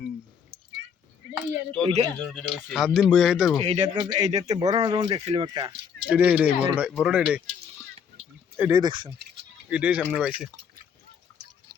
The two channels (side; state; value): right; quieter; 7.2 dB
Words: সাত দিন বইয়া খাইতে পারবো এইটাতে বড় না যখন দেখছিলাম একটা এটাই বড়টা এটাই দেখছেন এটাই সামনে পাইছে